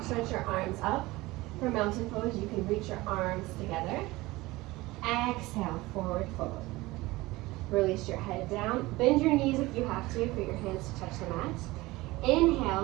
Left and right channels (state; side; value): quieter; left; 20.1 dB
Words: stretch your arms up. For mountain pose, you can reach your arms together. Exhale, forward fold. Release your head down. Bend your knees if you have to for your hands to touch the mat.